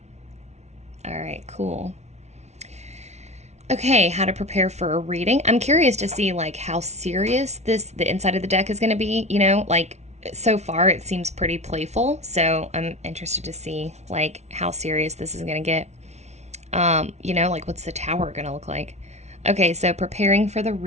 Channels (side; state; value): left; late; 0.32 ms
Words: All right, cool. Okay, how to prepare for a reading. I'm curious to see like how serious the inside of the deck is going to be, like so far it seems pretty playful. So I'm interested to see like how serious this is going to get. Like what's the tower going to look like? Okay, so preparing for the